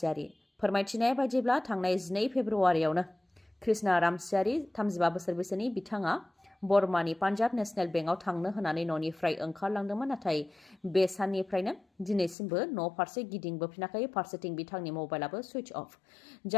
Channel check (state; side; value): drops out; right; at 12.4 s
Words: फोरमायथिनाय बायदिब्ला थांनाय 12 फेब्रुवारियावनो कृष्णा रामसियारि 35 बोसोर बैसोनि बिथाङा बरमानि पान्जाब नेशनेल बेंकआव थांनो होनानै न'निफ्राय ओंखारलांदोंमोन। नाथाय बे साननिफ्रायनो दिनैसिमबो न' फारसे गिदिंबोफिनाखै। फारसेथिं बिथांनि मबाइलाबो सुइच अफ।